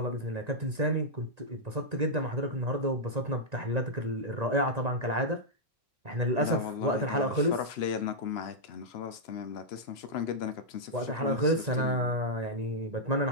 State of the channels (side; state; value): left; late; 1.9 ms